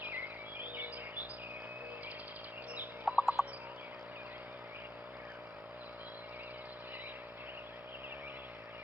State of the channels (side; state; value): both; normal; correlation 0.77